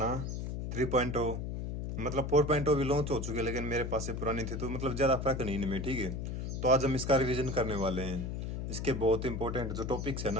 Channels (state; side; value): noise; left; hum, 4 dB below the sound